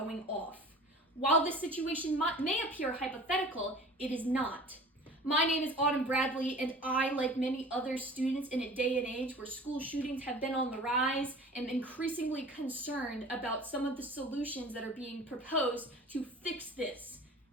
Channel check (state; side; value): normal; both; correlation 0.42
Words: off. While this situation may appear hypothetical, it is not. My name is Autumn Bradley, and I, like many other students in a day and age where school shootings have been on the rise, am increasingly concerned about some of the solutions that are being proposed to fix this,